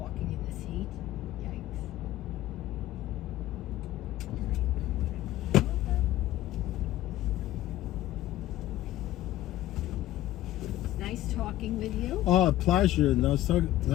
in this heat. Yikes. Nice talking with you. Oh, pleasure. Nice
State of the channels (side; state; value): right; quieter; 14.5 dB